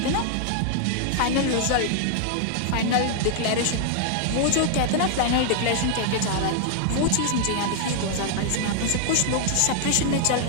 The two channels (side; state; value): both; different; correlation 0.00